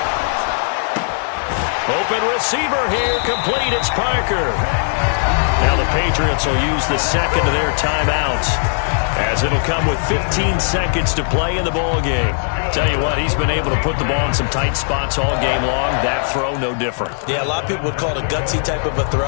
Open receiver here, complete. It's Parker. Now the Patriots will use the second of their timeouts, as it'll come with 15 seconds to play in the ball game. Tell you what, he's been able to put the ball in some tight spots all game long. That throw, no different. Yeah, a lot of people would call it a gutsy type of a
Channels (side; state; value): right; silent; 62 dB below the other